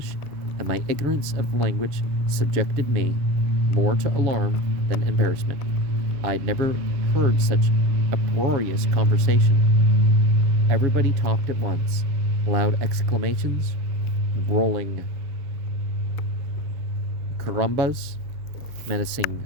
and my ignorance of the language subjected me more to alarm than embarrassment. I'd never heard such uproarious conversation. Everybody talked at once, loud exclamations, rolling carambas, menacing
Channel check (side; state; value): left; late; 7.2 ms